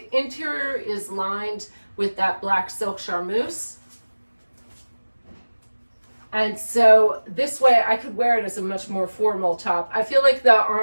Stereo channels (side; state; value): both; inverted; correlation -1.00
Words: interior is lined with that black silk charmeuse. And so this way I could wear it as a much more formal top. I feel like the